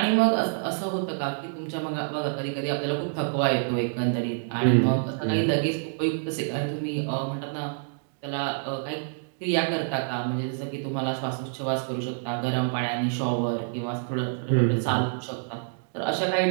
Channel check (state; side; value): silent; left; digital silence